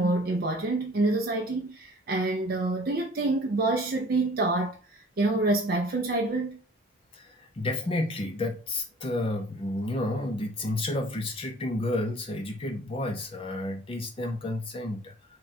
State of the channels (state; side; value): normal; both; correlation 0.50